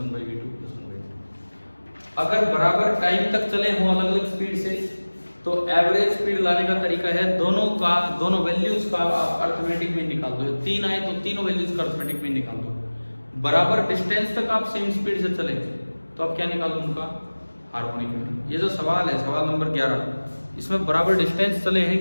by v2 plus 1 by v2। अगर बराबर टाइम तक चले हों अलग अलग स्पीड से तो एवरेज स्पीड लाने का तरीका है दोनों वैल्यूज का आप अरिथमेटिक मीन निकाल दो। 3 आए तो तीनों वैल्यूज का अरिथमेटिक मीन निकाल दो। बराबर डिस्टेंस तक आप सेम स्पीड से चले तो आप क्या निकालो, उनका हार्मोनिक मीन। ये जो सवाल है, सवाल नंबर 11, इसमें बराबर डिस्टेंस चले हैं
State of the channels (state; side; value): inverted; both; correlation -1.00